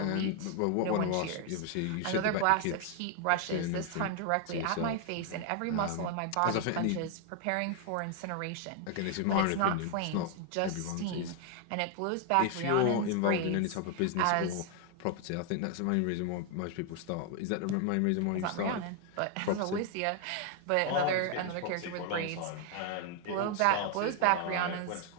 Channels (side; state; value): both; different; correlation 0.00